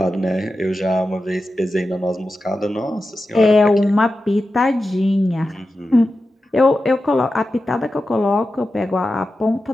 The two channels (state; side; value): normal; both; correlation 0.92